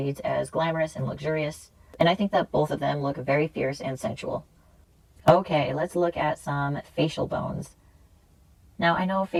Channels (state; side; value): identical; both; correlation 1.00